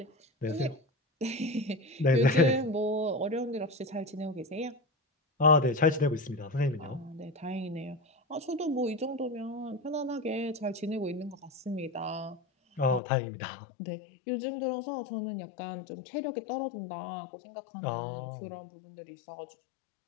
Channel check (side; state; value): right; drops out; at 13.0 s